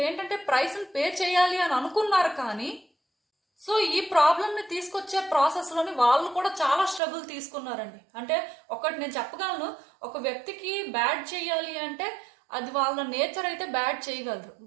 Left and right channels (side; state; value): left; drops out; at 7.0 s